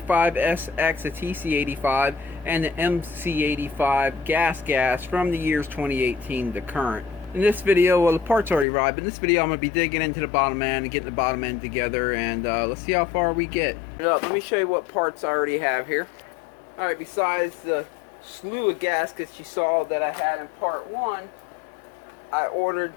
the TC85 and the MC85 gas from the years 2018 to current. In this video, well, the parts already arrived, but in this video I'm going to be digging into the bottom end and getting the bottom end together, and let's see how far we get. Let me show you what parts I already have here. Alright, besides the slew of gaskets you saw that I had in part 1, I ordered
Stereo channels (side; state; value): right; drops out; at 8.7 s